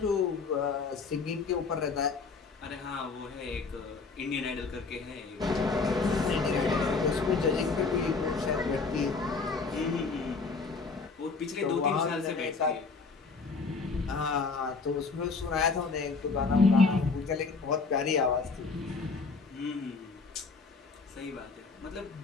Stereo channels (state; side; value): quieter; right; 4.4 dB